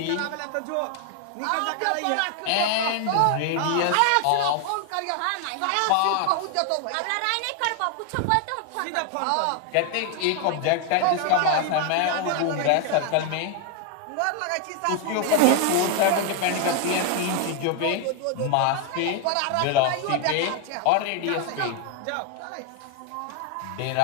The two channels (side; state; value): both; different; correlation 0.00